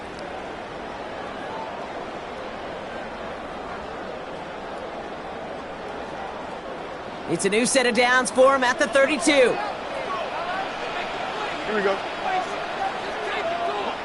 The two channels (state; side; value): identical; both; correlation 1.00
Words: It's a new set of downs for him at the 32. Here we go.